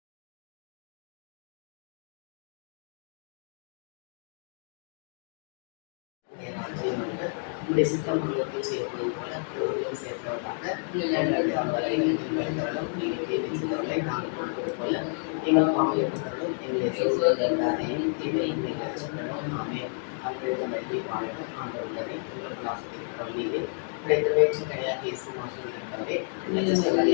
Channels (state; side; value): silent; right; 58 dB below the other